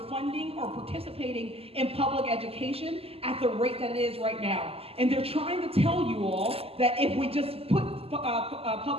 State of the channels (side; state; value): left; late; 0.28 ms